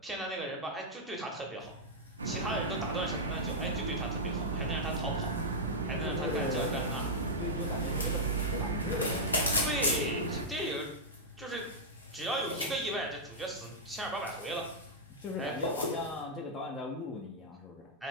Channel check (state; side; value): normal; both; correlation -0.07